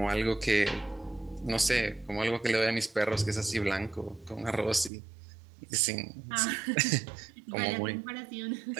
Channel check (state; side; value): drops out; left; at 4.9 s